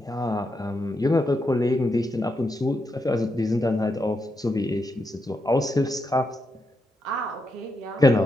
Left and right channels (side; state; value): both; normal; correlation 0.83